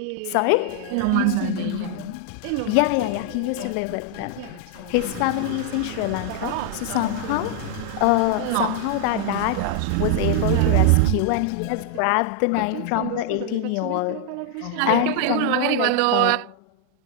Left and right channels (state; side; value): different; both; correlation 0.00